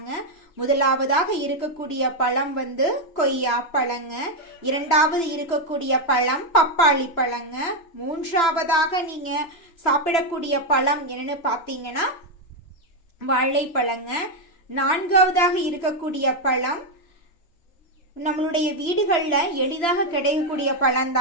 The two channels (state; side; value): late; right; 3.0 ms